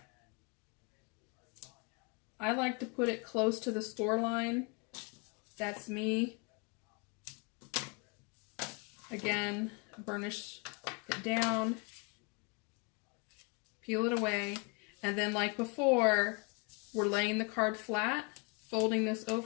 I like to put it close to the score line. That's me. Again, burnish it down, peel it away, and then like before, we're laying the card flat, folding this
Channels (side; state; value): right; quieter; 32.5 dB